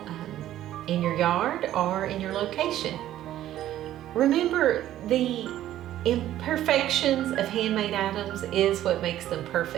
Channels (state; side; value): quieter; left; 12.9 dB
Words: in your yard or in your location. Remember, the imperfections of handmade items is what makes them